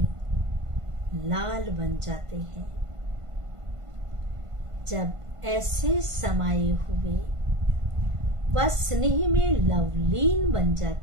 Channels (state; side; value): late; left; 1.5 ms